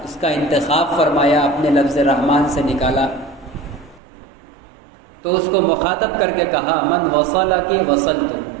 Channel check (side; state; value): left; drops out; at 4.0 s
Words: اس کا انتخاب فرمایا، اپنے لفظ رحمان سے نکالا، تو اس کو مخاطب کر کے کہا من وصلک وصلت،